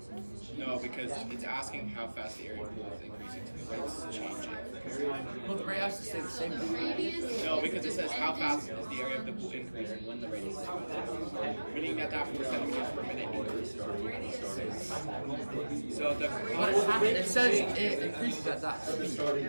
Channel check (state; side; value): inverted; both; correlation -1.00